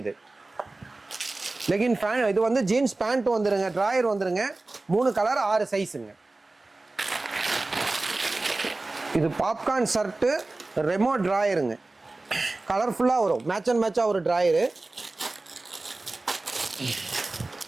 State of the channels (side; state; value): left; quieter; 3.2 dB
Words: இது. லெகின் ஃபேன், இது வந்து ஜீன்ஸ் பேண்ட் வந்துருங்க, ட்ராயர் வந்துருங்க. 3 கலர் 6 சைஸுங்க. இது பாப்கார்ன் ஷர்ட்டு, ரெமோ ட்ராயருங்க. கலர்ஃபுல்லாக வரும், மேட்ச் அண்ட் மேட்சாக ஒரு ட்ராயரு.